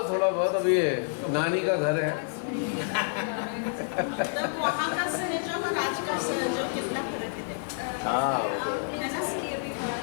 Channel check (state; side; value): silent; right; digital silence